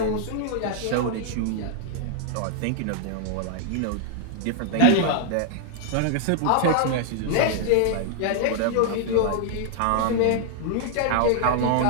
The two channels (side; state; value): both; different; correlation 0.00